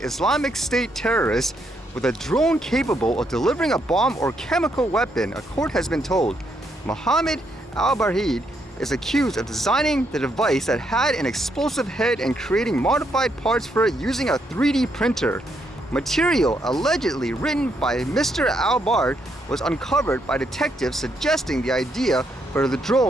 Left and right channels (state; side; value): normal; both; correlation 0.76